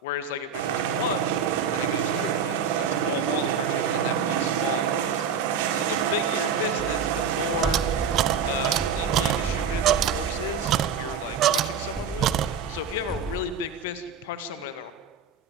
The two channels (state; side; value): quieter; left; 6.0 dB